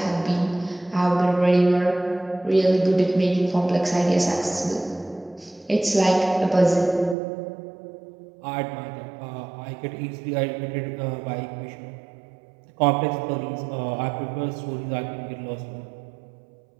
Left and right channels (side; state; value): left; drops out; at 7.2 s